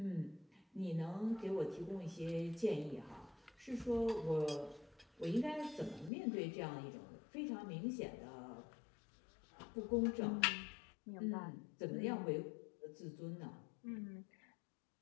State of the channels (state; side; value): drops out; right; at 6.1 s